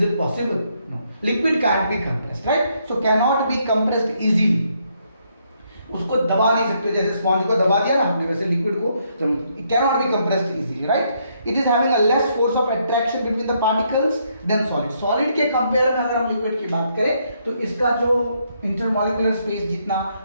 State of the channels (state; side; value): inverted; both; correlation -0.73